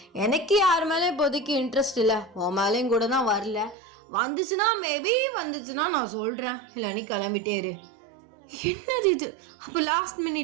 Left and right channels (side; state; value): left; drops out; at 3.8 s